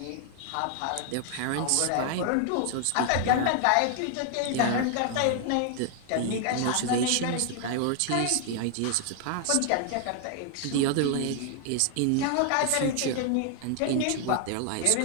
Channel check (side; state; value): both; different; correlation 0.00